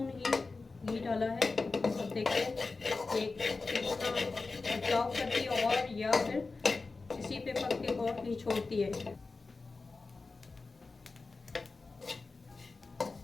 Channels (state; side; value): quieter; right; 3.9 dB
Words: ही घी डाला है। अब देखिए एक कितना बचाव करती है और या फिर इसी पे पक के और घी छोड़ती है।